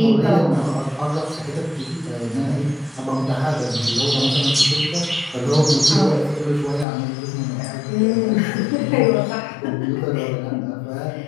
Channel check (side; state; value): right; drops out; at 6.9 s